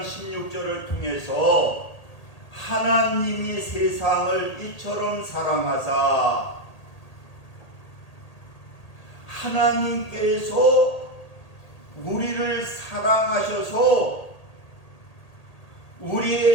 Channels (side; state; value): right; late; 1.8 ms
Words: 16절을 통해서 하나님이 세상을 이처럼 사랑하사 하나님께서 우리를 사랑하셔서